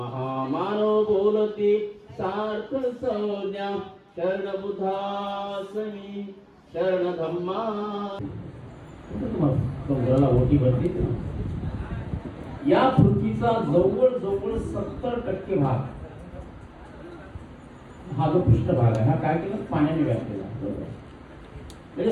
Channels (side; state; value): both; identical; correlation 1.00